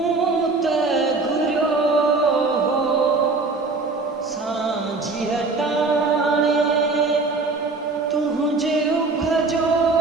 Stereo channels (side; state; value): left; quieter; 3.7 dB